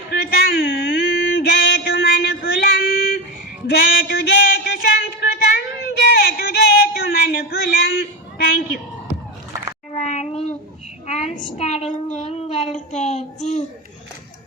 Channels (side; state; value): both; normal; correlation 0.18